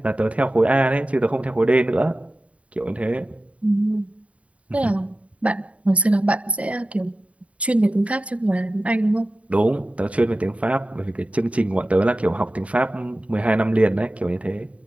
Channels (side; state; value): left; late; 0.065 ms